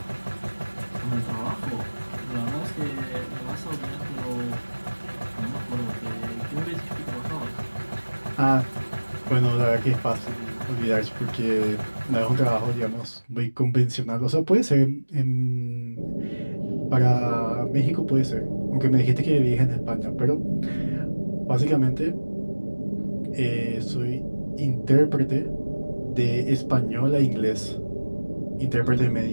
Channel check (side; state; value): both; inverted; correlation -1.00